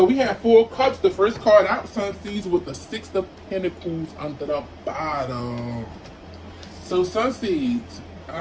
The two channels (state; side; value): identical; both; correlation 1.00